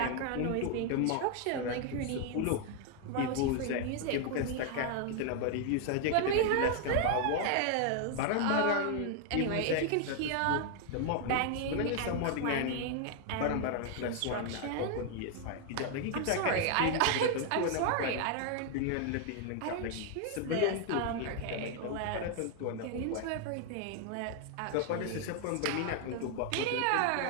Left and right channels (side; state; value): both; different; correlation 0.00